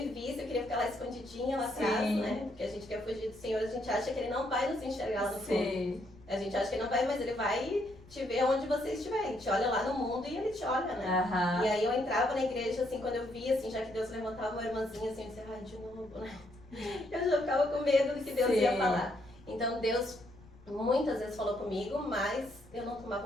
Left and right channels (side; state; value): left; noise; rumble, 23 dB below the sound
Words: visse, eu queria ficar lá escondidinha lá atrás, né? Porque a gente quer fugir do Senhor, a gente acha que Ele não vai nos enxergar lá no fundo. A gente acha que Ele não vai, mas Ele vai te ver onde você estiver. Ele te olha lá no mundo e Ele te olha, né? E aí eu entrava na igreja, assim, quando eu via, assim, já que Deus levantava uma irmãzinha, assim, eu dizia, ai, de novo, né? Eu já ficava com medo do que Deus ia falar. Então Deus muitas vezes falou comigo, mas eu não